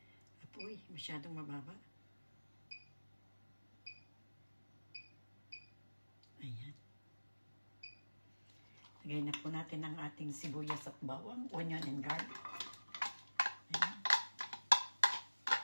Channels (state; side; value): inverted; both; correlation -1.00